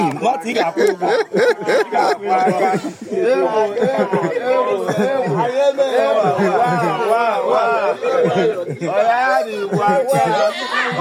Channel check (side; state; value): both; identical; correlation 1.00